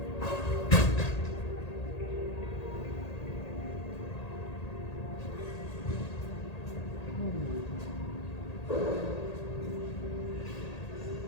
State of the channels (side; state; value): right; late; 1.8 ms